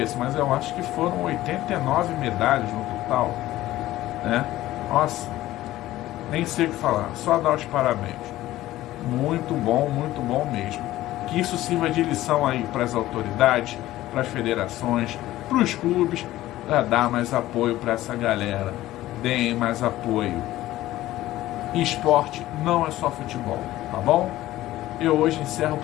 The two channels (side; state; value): right; quieter; 15.5 dB